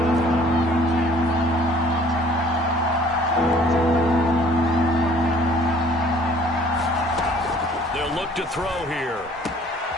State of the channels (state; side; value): normal; both; correlation 0.55